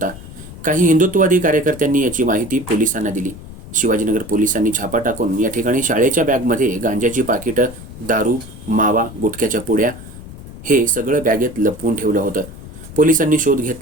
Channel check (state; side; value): noise; left; rumble, 15 dB below the sound